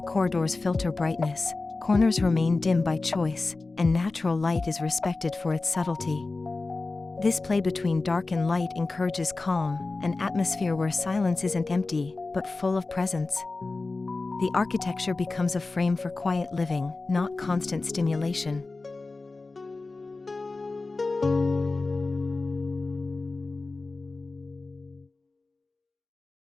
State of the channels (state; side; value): quieter; right; 3.5 dB